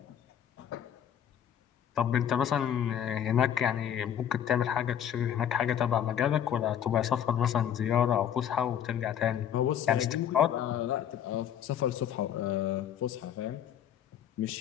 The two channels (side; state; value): right; quieter; 9.6 dB